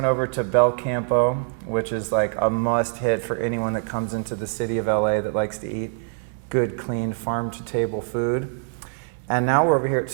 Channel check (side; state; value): left; silent; 58 dB below the other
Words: over to Bel Campo, which is like a must-hit for anyone that comes into the city of LA that likes to eat good, clean, farm-to-table food. And now we're over here at